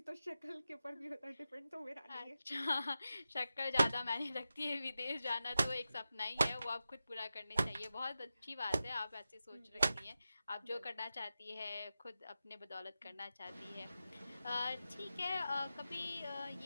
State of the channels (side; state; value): both; inverted; correlation -0.91